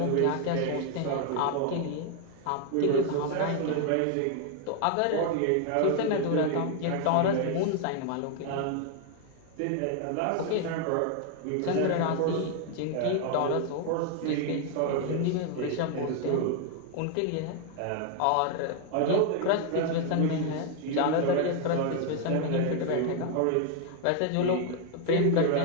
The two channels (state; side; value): different; both; correlation 0.00